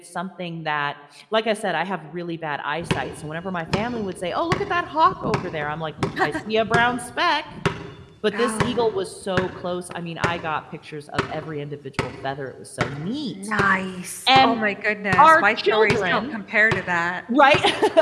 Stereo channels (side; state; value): both; identical; correlation 1.00